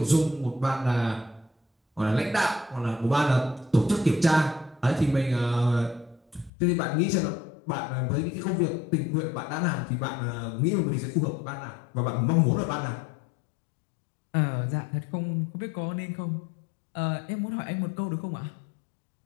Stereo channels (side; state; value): right; drops out; at 6.5 s